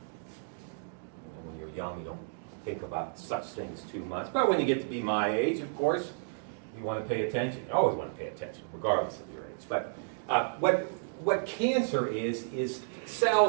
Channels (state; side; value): silent; left; digital silence